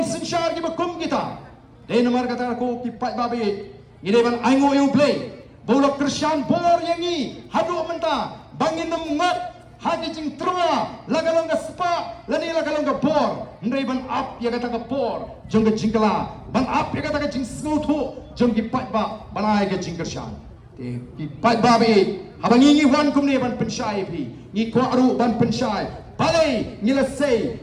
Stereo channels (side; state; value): both; identical; correlation 1.00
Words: sinshar ki bakum kita de nomor kata ko ki pat babe ngide ban aingo yo play bola Christian bor yangi hadu menta bangin ngat hagi jing trua lagalong ka spa lani lagalong ka bor ndai ban up ya kata ka bor jong ka jingkala ban up ya kata ka jing snotu jong ki pat ba banai ka jing kershan te ki pat ba be habangi ngi wan kum ne ban penshai phi ngi ko aru ban penshai balai ngila sei